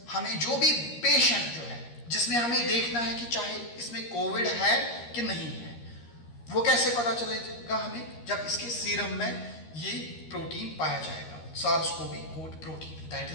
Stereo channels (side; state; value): right; late; 13 ms